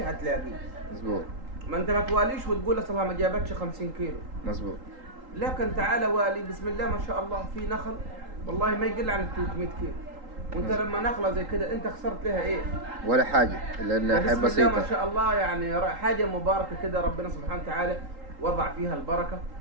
هتلاقيه. مظبوط. ما انت ما تواليش وتقول اصلها ما جابتش 50 كيلو. مظبوط. لكن تعال والي بسم الله ما شاء الله، في نخل والله ما يقل عن 300 كيلو، وانت لما نخله زي كده انت خسرت لها ايه؟ ولا حاجه، لانها حاجه بسيطه. بسم الله ما شاء الله، يعني حاجه مباركه كده، ربنا سبحانه وتعالى وضع فيها البركه.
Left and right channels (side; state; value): left; late; 3.8 ms